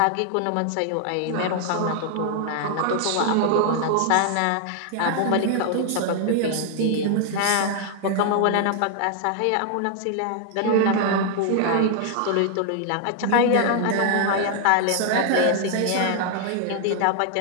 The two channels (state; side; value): different; both; correlation 0.00